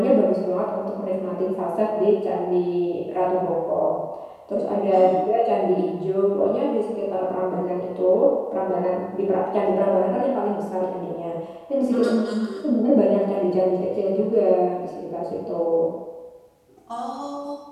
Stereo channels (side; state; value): both; identical; correlation 1.00